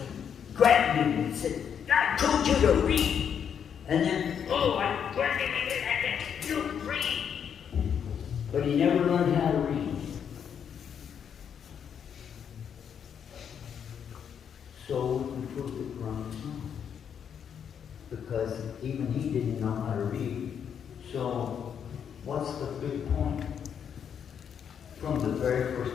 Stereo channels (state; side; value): quieter; right; 8.0 dB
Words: Grabbed him and said, I told you to read. And then, I you read. But he never learned how to read. So we proved the Quran was wrong. Because even he didn't know how to read. So, what's the big point? From the very